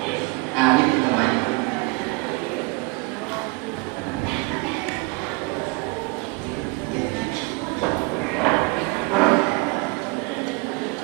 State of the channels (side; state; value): left; quieter; 26.6 dB